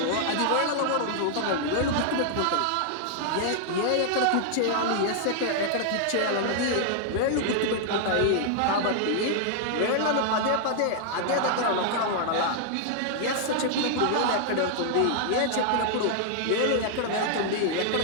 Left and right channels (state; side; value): different; both; correlation 0.00